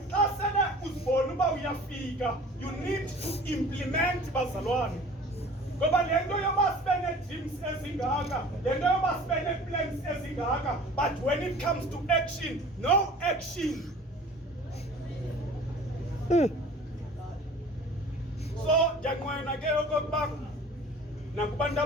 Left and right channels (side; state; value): both; normal; correlation 0.45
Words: xa sele uzibona uba uyafika, you need to implement bazalwane. Ngoba le nto yoba sibe nee-dreams ezingaka, le nto yoba sibe nee-plans ezingaka, but when it comes to action, no action. So ndiyanqwena ke okokuba nakubantu